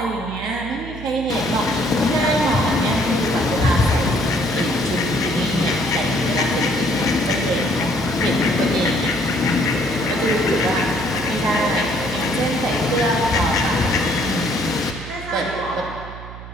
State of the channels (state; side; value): noise; right; hum, 13 dB below the sound